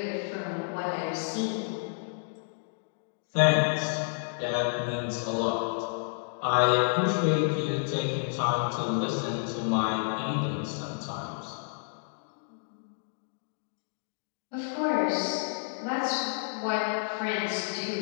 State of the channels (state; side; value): silent; right; digital silence